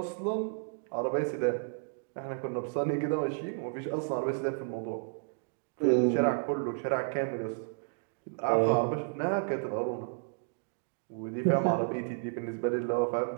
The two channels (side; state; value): left; silent; digital silence